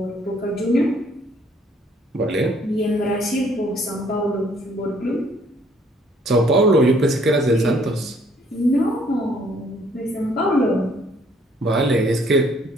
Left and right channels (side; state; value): both; normal; correlation 0.63